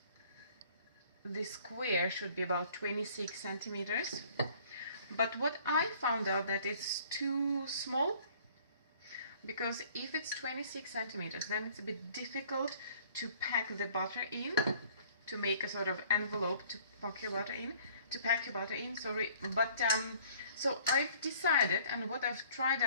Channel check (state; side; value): inverted; both; correlation -0.55